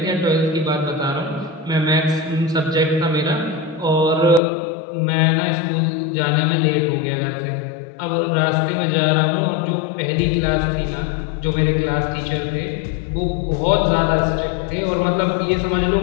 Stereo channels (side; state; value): right; drops out; at 4.4 s